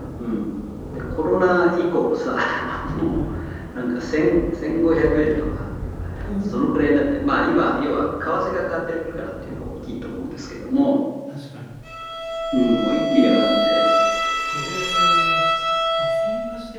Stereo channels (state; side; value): identical; both; correlation 1.00